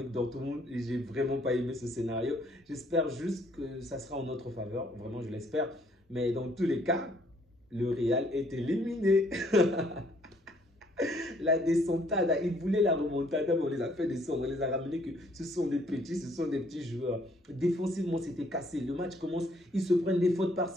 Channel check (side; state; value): both; normal; correlation 0.64